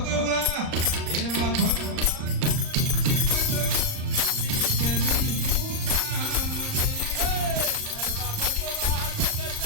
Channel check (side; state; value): left; late; 38 ms